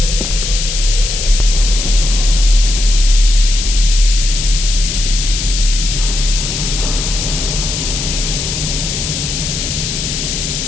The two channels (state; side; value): noise; left; hiss, 4 dB below the sound